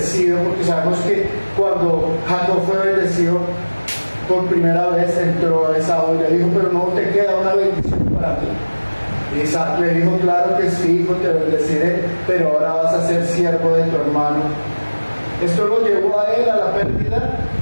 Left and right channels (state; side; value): inverted; both; correlation -1.00